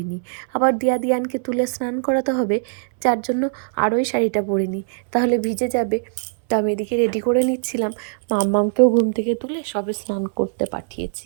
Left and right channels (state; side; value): silent; left; 65 dB below the other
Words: আবার দিয়ানকে তুলে স্নান করাতে হবে, যার জন্য আরোই শাড়িটা পরিনি, তাহলে ভিজে যাবে। তো আমি এদিকে রেডি করে নিচ্ছিলাম। মাম্মামকেও ঘুম থেকে তুলে সবে স্নান করতে পাঠিয়েছি।